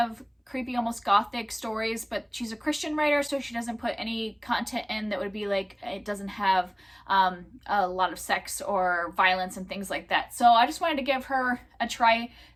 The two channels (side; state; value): both; identical; correlation 1.00